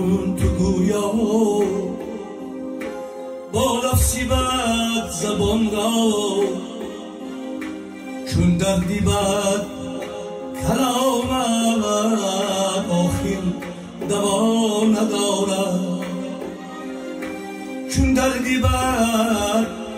تو گویا با نفسی برد زبان را چون دردی بد کلامت آخر دوا ندارد چون دردی بر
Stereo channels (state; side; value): identical; both; correlation 1.00